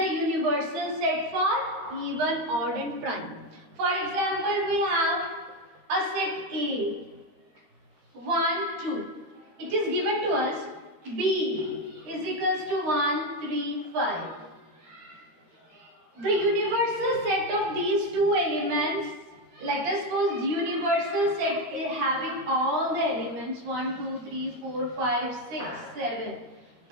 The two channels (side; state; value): left; late; 13 ms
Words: universal set for even, odd and prime. For example, we have a set A, 1, 2. It is given to us B is equals to 1, 3, 5. The universal set of these two elements, let us suppose the universal set is having all the elements 1, 2, 3, 4, 5, 6, 7.